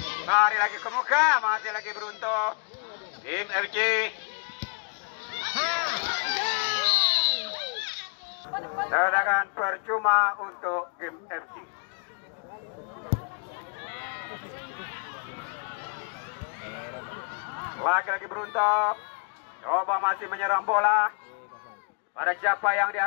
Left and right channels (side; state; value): right; quieter; 39.1 dB